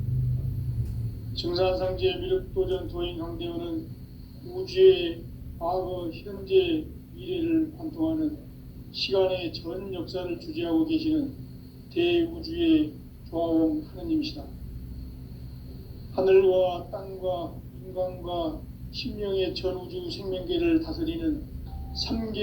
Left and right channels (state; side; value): identical; both; correlation 1.00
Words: 증산상제 미륵도전 도인 강대훈은 우주의 과거, 현재, 미래를 관통하는 시간의 전 역사를 주재하고 계시는 대우주의 조화원 하느님이시다. 하늘과 땅과 인간과 신명의 전우주 생명계를 다스리는